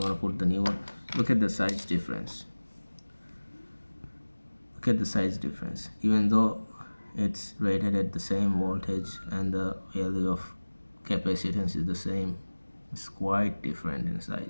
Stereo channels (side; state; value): both; inverted; correlation -1.00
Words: put the new one. Look at the size difference. Look at the size difference. Even though it's rated at the same voltage and the value of capacitance is the same, it's quite different in